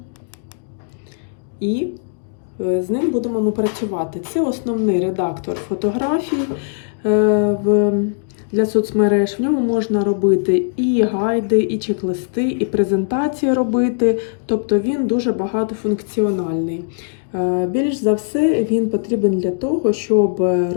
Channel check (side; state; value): right; silent; digital silence